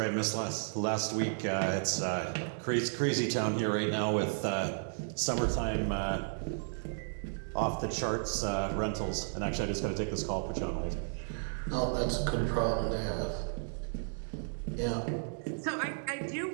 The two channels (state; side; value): silent; left; digital silence